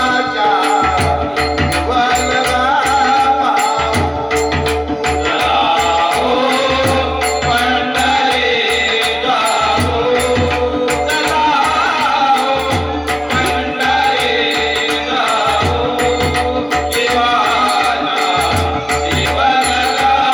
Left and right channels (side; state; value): both; identical; correlation 1.00